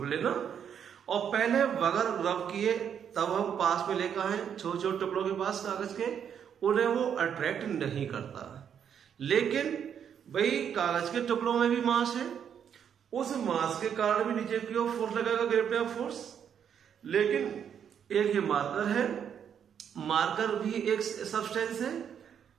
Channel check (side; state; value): left; quieter; 8.3 dB